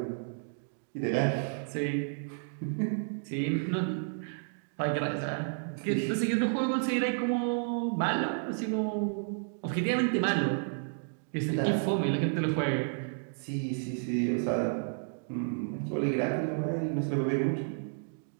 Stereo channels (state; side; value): silent; left; digital silence